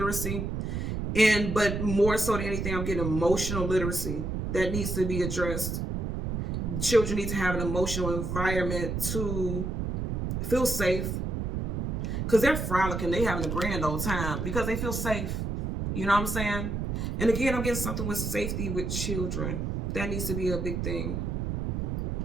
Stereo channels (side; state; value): right; noise; rumble, 2 dB below the sound